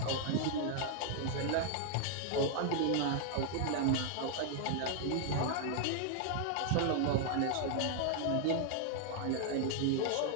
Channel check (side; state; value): both; different; correlation 0.00